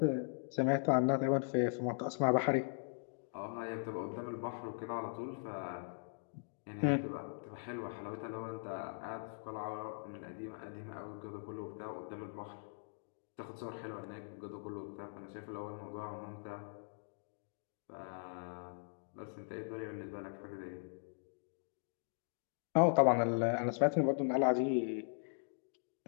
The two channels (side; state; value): right; silent; digital silence